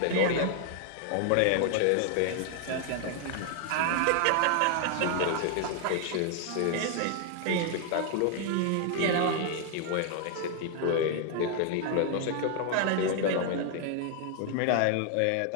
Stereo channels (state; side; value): different; both; correlation 0.00